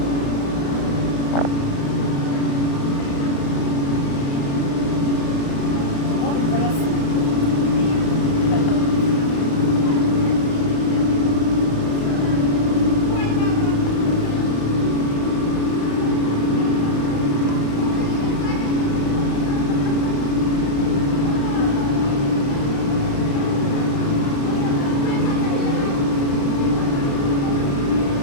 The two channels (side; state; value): right; late; 35 ms